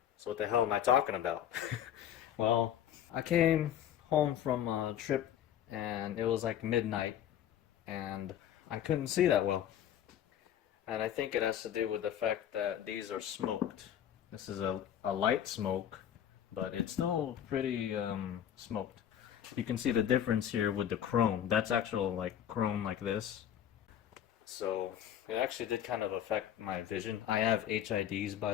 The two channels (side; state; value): right; quieter; 10.2 dB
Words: So what the hell am I talking about? Well, I came home from a trip and it was like midnight and I couldn't see that well. And I think it has to do with the fact that these are smoked. This is a light smoke, but it's still pretty smoked. You can see the difference here with the chrome. That's actual like chrome like this. So it actually did kind of affect my vision. I have HIDs, by